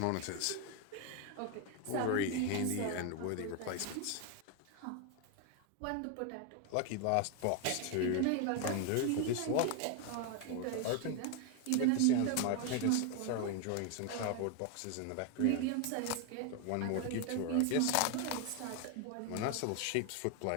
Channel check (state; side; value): different; both; correlation 0.01